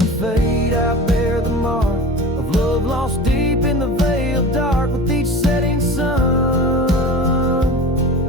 fade I bear the mark of love lost deep in the veil dark. With each setting sun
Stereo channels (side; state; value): both; normal; correlation 0.35